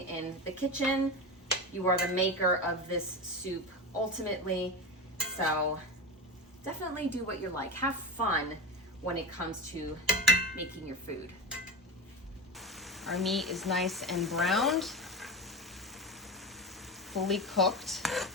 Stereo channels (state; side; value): normal; both; correlation 0.23